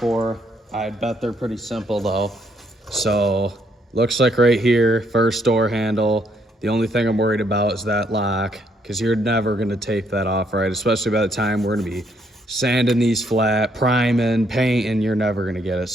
I bet they're pretty simple though. So looks like right here, first door handle. The only thing I'm worried about is that lock, because you're never gonna tape that off right, especially by the time we're gonna be sanding these flat, priming, painting, you're never gonna get it.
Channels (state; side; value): normal; both; correlation 0.71